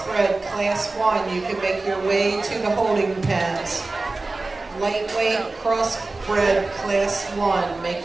class 1, you can make your way to the holding pens. Lightweight crossbred class 1,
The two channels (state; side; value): quieter; left; 3.4 dB